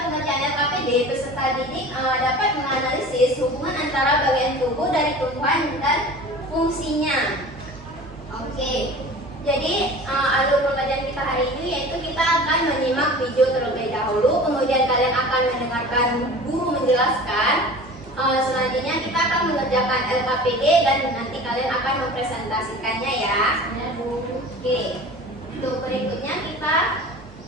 pengerjaan LKPD, peserta didik dapat menganalisis hubungan antara bagian tubuh dari tumbuhan dan fungsinya. Oke, jadi alur pengajian kita hari ini yaitu kita akan menyimak video terlebih dahulu, kemudian kalian akan mendengarkan guru menjelaskan. Selanjutnya kita akan mengerjakan LKPD dan nanti kalian akan mempresentasikannya ya. Oke, untuk berikutnya kita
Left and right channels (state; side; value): normal; both; correlation 0.40